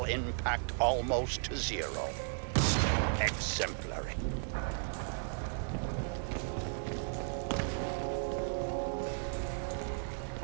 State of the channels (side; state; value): left; silent; digital silence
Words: impact almost to zero. Exemplary.